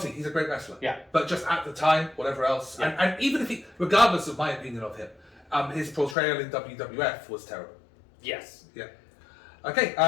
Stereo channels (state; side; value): drops out; right; at 6.2 s